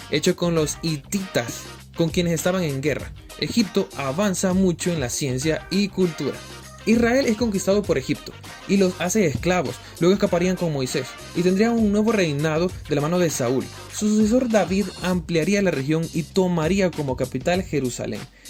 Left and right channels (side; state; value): both; identical; correlation 1.00